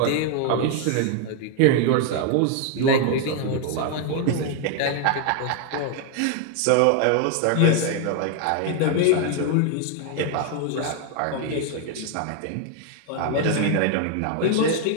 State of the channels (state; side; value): different; both; correlation 0.01